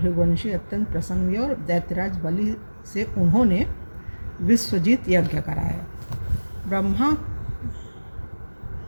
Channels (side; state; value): both; inverted; correlation -1.00